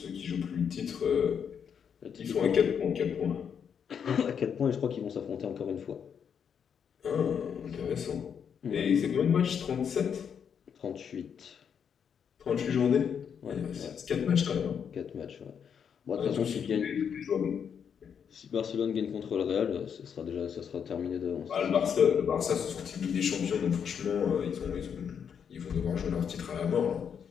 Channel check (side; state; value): right; quieter; 7.5 dB